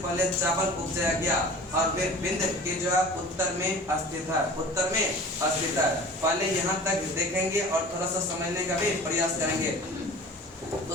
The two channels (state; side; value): normal; both; correlation 0.41